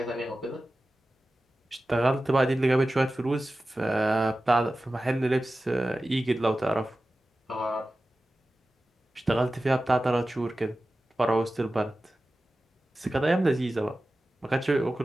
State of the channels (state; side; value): normal; both; correlation 0.95